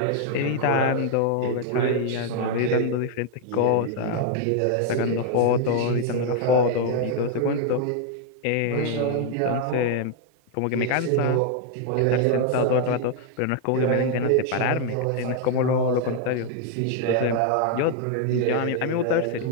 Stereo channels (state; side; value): different; both; correlation 0.00